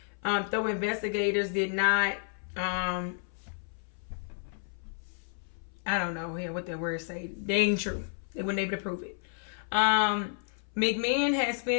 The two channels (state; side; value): silent; right; 57 dB below the other